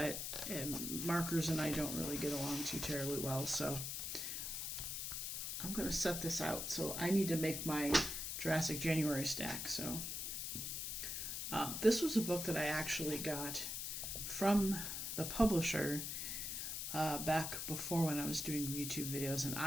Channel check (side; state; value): left; noise; hiss, 3 dB below the sound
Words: markers and I don't really get along too terribly well, so I'm going to set this out. So I need to make my Jurassic January stack. So this was a book that I actually got from the publisher back before when I was doing YouTube videos, and